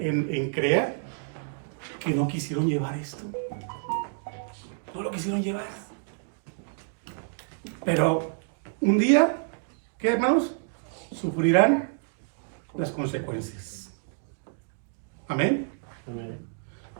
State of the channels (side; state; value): left; silent; digital silence